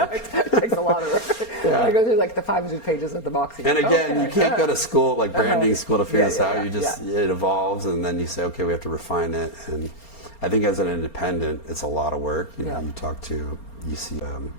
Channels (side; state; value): right; late; 4.3 ms